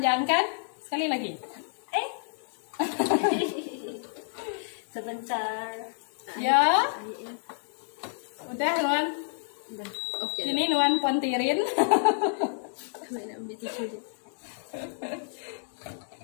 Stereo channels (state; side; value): silent; right; digital silence